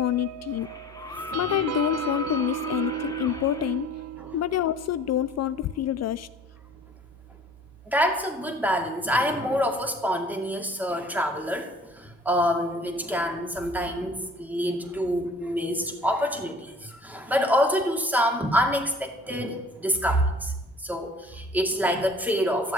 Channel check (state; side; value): normal; both; correlation 0.49